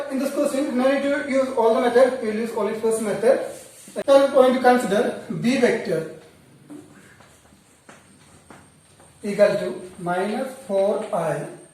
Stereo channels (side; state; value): both; identical; correlation 1.00